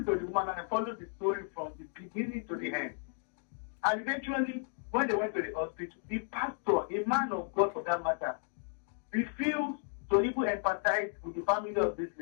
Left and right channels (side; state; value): right; silent; 55 dB below the other